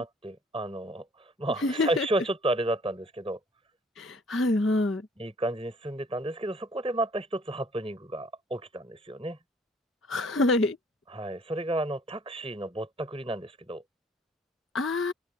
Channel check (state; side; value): normal; both; correlation 0.57